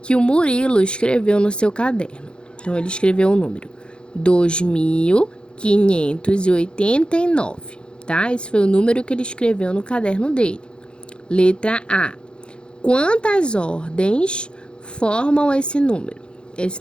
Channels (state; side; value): late; right; 0.053 ms